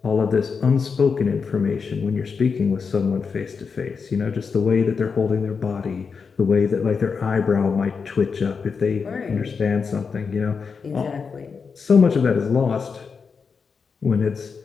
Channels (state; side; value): quieter; right; 5.5 dB